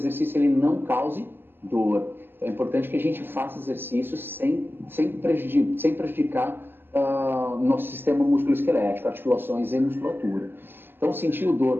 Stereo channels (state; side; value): late; left; 0.099 ms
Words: ele não cause dor. Então, é importante que a gente faça exercícios sem prejudicar nosso sistema musculoesquelético, articulações e musculatura. Então, sentiu